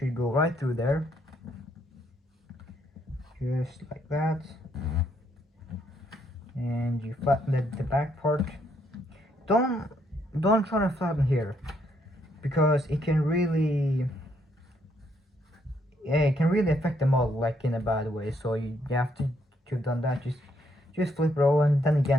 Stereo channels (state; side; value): normal; both; correlation 0.72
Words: go right through there, just like that. And you flatten the back part. Don't try to flatten here, because it can really, yeah, it can really affect the model, like in a bad way. So you have to have done that. Just flip it over, and then